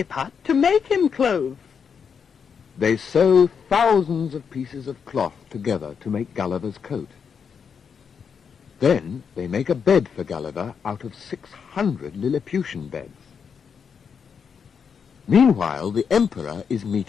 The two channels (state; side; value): quieter; right; 6.6 dB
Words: to make him clothes? They sew thousands of pieces of cloth together to make Gulliver's coat. Then they make a bed for Gulliver out of 600 Lilliputian beds. Meanwhile, the Emperor is